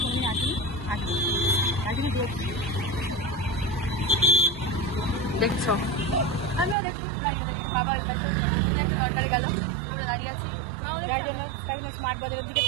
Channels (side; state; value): left; drops out; at 6.8 s